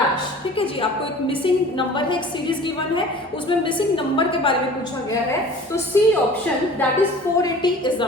ठीक है जी, आपको एक मिसिंग नंबर है, एक सीरीज गिवन है, उसमें मिसिंग नंबर के बारे में पूछा गया है। तो C option that is 480 is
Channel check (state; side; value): normal; both; correlation 0.44